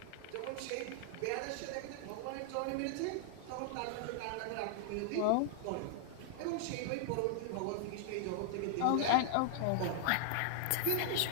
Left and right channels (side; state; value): both; different; correlation -0.01